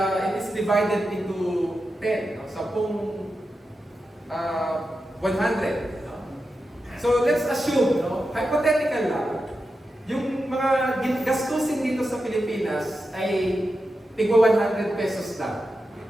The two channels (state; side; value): normal; both; correlation 0.90